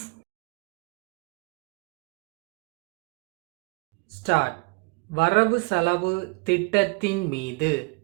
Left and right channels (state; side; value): quieter; left; 29.7 dB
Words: Start. வரவு செலவு திட்டத்தின் மீது